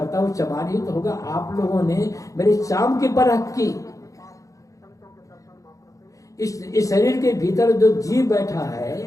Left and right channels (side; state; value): right; late; 0.16 ms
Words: वो चमार ही तो होगा। आप लोगों ने मेरी चाम की परख की। इस शरीर के भीतर जो जीव बैठा है